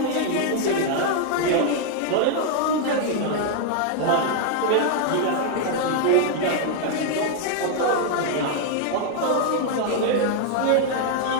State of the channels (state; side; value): different; both; correlation 0.00